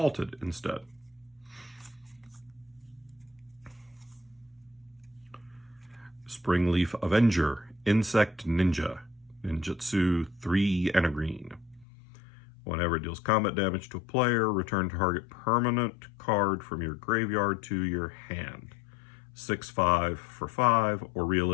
instead. Springleaf Avenger, Insect Ninja, Ninjutsu 3 and a green. Whenever it deals combat damage to a player, return target permanent card from your graveyard to your hand. 6/5 for 5, or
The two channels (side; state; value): right; drops out; at 11.9 s